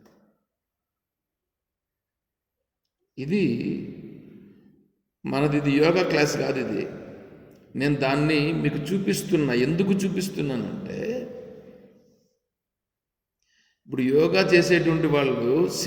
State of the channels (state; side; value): identical; both; correlation 1.00